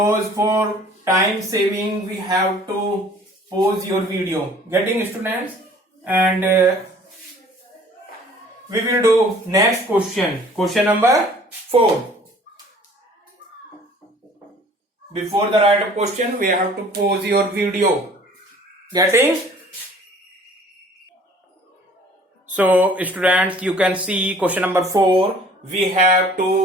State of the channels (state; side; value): normal; both; correlation 0.52